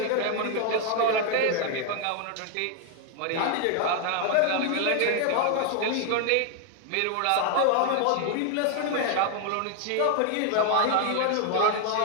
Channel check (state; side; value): different; both; correlation 0.01